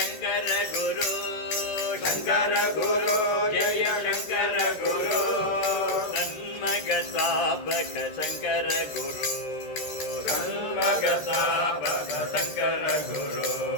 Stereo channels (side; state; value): right; late; 13 ms